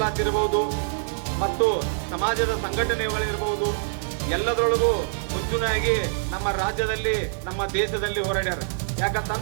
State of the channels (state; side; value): silent; left; digital silence